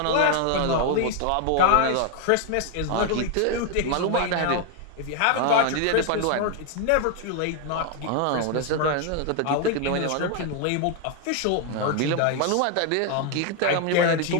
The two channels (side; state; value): both; different; correlation 0.00